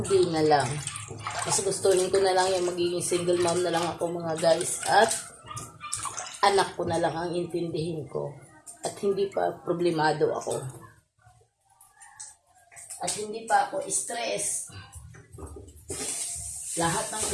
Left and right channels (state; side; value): identical; both; correlation 1.00